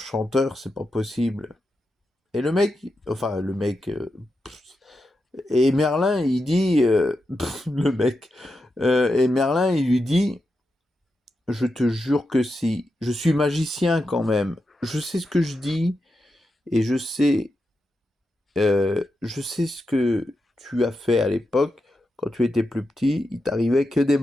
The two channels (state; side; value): normal; both; correlation 0.88